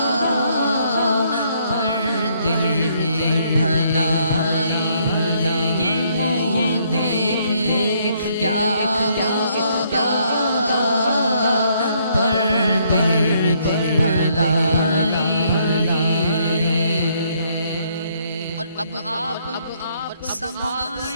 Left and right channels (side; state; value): both; inverted; correlation -0.69